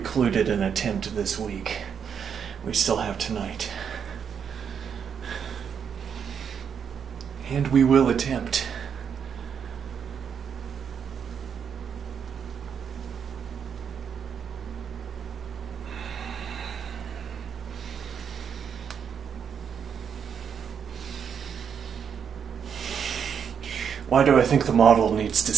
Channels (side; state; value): left; quieter; 7.4 dB